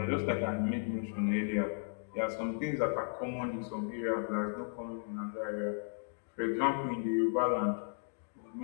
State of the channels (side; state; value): right; silent; digital silence